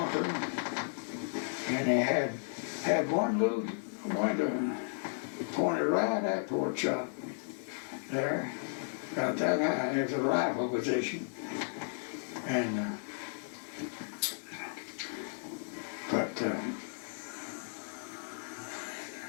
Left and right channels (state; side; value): silent; right; digital silence